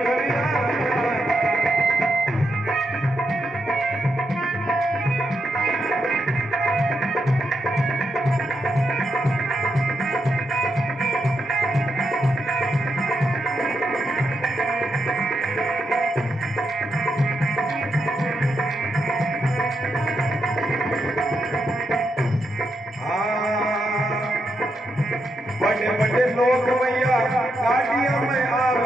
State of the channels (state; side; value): normal; both; correlation 0.83